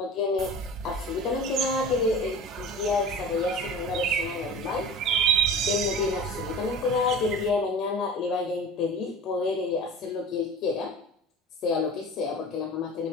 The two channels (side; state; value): both; normal; correlation 0.36